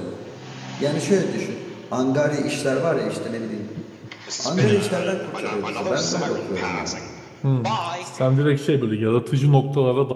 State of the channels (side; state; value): both; identical; correlation 1.00